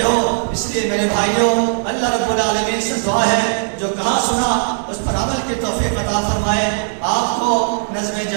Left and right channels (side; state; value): left; silent; 59 dB below the other